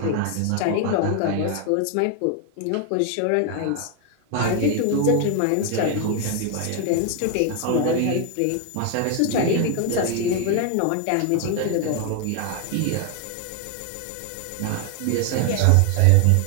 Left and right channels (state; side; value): different; both; correlation 0.00